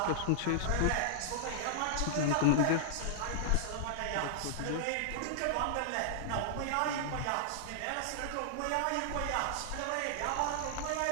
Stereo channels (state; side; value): different; both; correlation -0.01